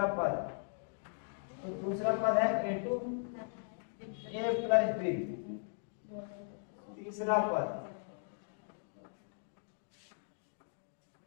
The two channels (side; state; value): right; silent; digital silence